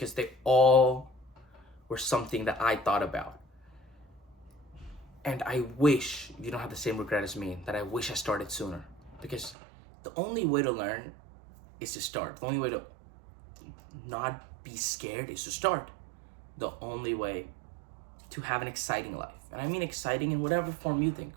they all were something that I thought about. And I wish you don't have the same regret as me, that I wish I started sooner. Because the only way to learn is to start. The only way to not be scared is to start. The only way to have an exciting life. And I mean exciting in whatever form you think.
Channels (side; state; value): left; drops out; at 9.6 s